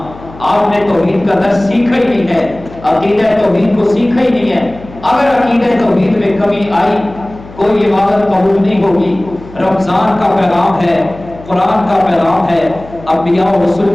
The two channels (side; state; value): left; noise; hum, 19 dB below the sound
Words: آپ نے توحید کا درس سیکھا ہی نہیں ہے, عقیدہ توحید کو سیکھا ہی نہیں ہے. اگر عقیدہ توحید میں کمی آئی, کوئی عبادت قبول نہیں ہوگی. رمضان کا پیغام ہے, قرآن کا پیغام ہے, انبیاء و